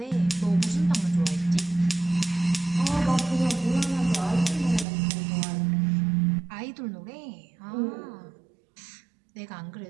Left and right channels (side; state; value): left; drops out; at 4.9 s